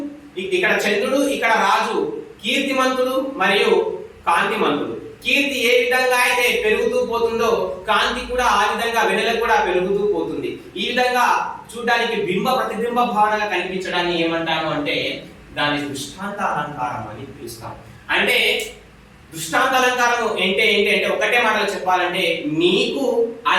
చంద్రుడు, ఇక్కడ రాజు కీర్తిమంతుడు మరియు కాంతిమంతుడు. కీర్తి ఏ విధంగా అయితే పెరుగుతూ పోతుందో కాంతి కూడా ఆ విధంగా వెన్నెలకు కూడా పెరుగుతూ పోతుంది. ఈ విధంగా చూడడానికి బింబ ప్రతిబింబ భావనగా కనిపించడాన్ని ఏమంటాము అంటే దాని దృష్టాంత అలంకారం అని పిలుస్తాం. అంటే దృష్టాంత అలంకారం ఏంటి అంటే ఒకటే మాటలు చెప్పాలంటే, నీకు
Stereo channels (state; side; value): identical; both; correlation 1.00